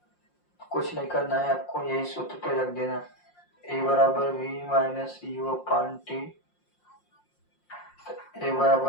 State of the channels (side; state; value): right; late; 5.6 ms